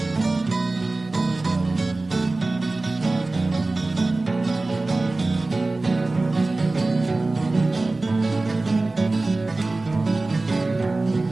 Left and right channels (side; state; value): left; quieter; 3.2 dB